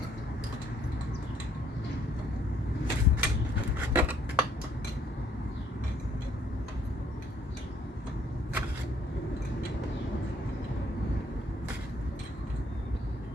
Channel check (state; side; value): normal; both; correlation 0.66